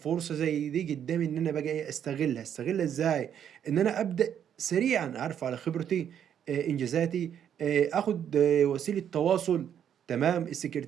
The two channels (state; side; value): quieter; left; 9.2 dB